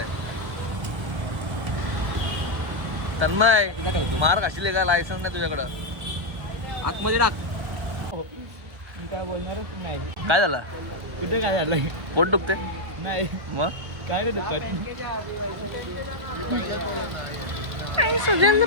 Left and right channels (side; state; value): left; late; 1.1 ms